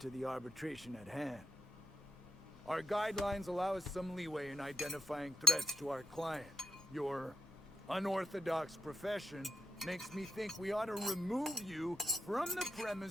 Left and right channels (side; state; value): both; normal; correlation 0.83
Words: the arbitration at hand. Our guidelines allow us some leeway in identifying threats to our client. Your unorthodox profession makes me think we ought to remove you from the